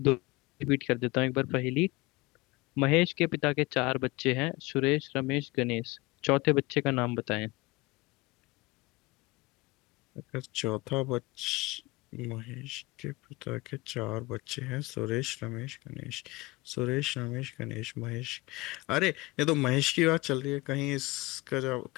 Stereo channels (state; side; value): quieter; right; 22.5 dB